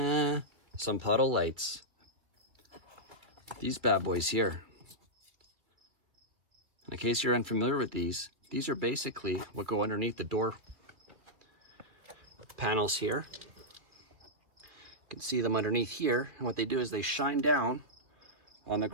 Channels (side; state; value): left; late; 2.1 ms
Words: some puddle lights. These bad boys here. In case you're unfamiliar with these are basically what go underneath the door panels here. You can see them underneath here, and what they do is they shine down on the